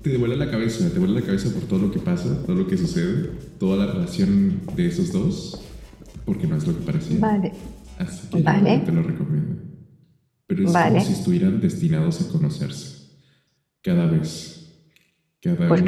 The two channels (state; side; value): identical; both; correlation 1.00